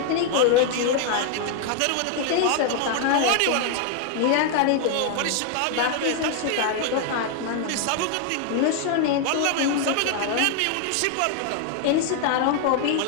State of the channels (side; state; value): both; different; correlation 0.00